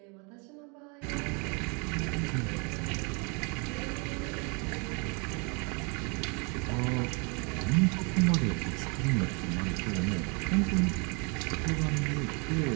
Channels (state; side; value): quieter; left; 33.0 dB